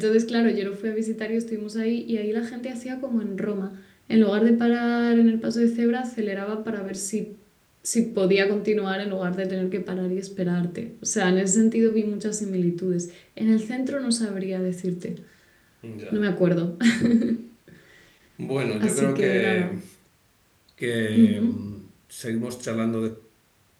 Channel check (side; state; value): both; identical; correlation 1.00